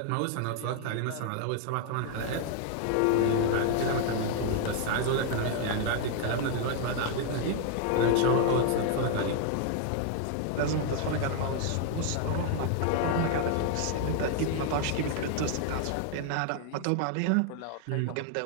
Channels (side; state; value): both; different; correlation 0.00